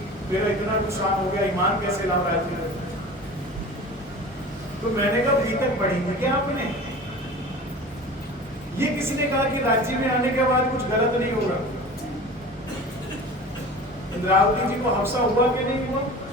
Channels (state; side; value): normal; both; correlation 0.37